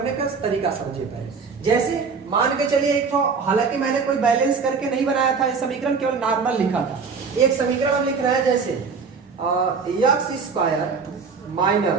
का तरीका समझिए पहले। जैसे मान के चलिए एक ठो, हालांकि मैंने कोई बैलेंस करके नहीं बनाया था, ये समीकरण केवल नॉर्मल लिखा था। एक समीकरण हम लिख रहे हैं, जैसे x²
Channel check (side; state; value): left; quieter; 5.3 dB